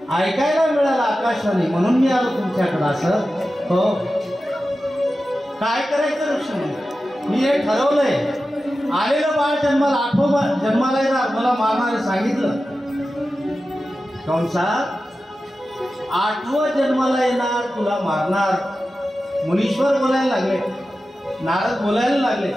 ऐकायला मिळालं आकाशवाणी, म्हणून मी आलो तुमच्याकडे. असं हो, काय करायचं ऋषी म्हणून मी हे ठरवलंय. आलेलं बाळ जन्माला येणार, मला मारणारे सांगितलं. कंसात 8वं जन्माला येणार, तुला मारणार. मुनीश्वर बोलायला लागले, नारद बोलायला लागले.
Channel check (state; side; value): normal; both; correlation 0.93